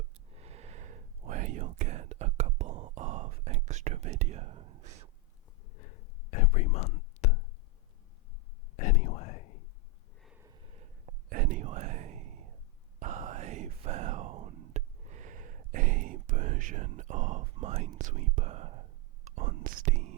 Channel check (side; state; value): both; normal; correlation 0.03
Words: where you'll get a couple of extra videos every month. Anyway, I found a version of Minesweeper on